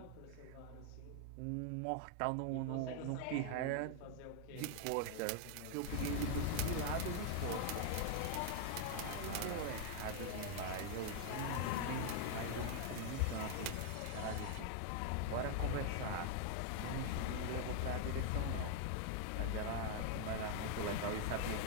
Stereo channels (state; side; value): different; both; correlation 0.00